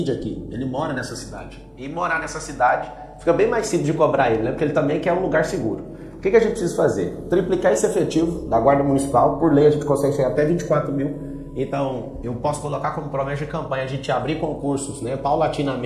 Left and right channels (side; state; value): both; identical; correlation 1.00